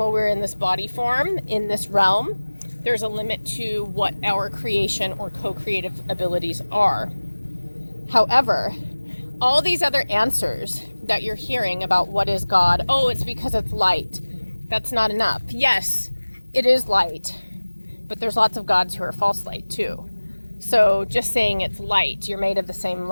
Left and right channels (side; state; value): both; inverted; correlation -1.00